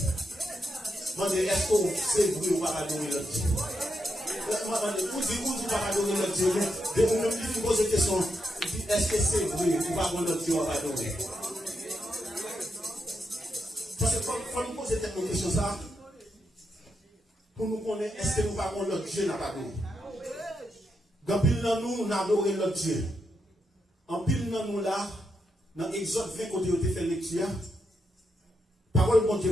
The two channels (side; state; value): both; normal; correlation 0.84